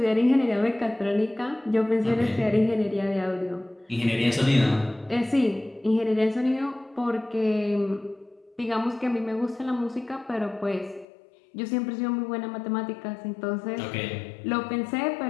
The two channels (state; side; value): drops out; right; at 11.1 s